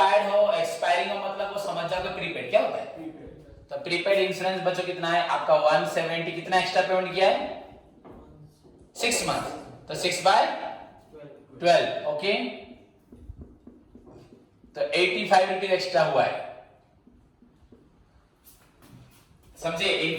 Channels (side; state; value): both; identical; correlation 1.00